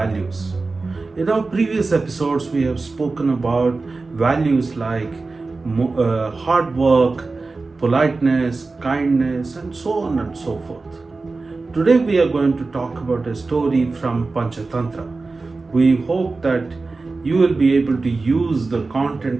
In our previous episodes, we have spoken about values like hard work, politeness, kindness, and so on and so forth. Today we are going to talk about a story from Panchatantra. We hope that you will be able to use the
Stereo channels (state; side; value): quieter; left; 3.8 dB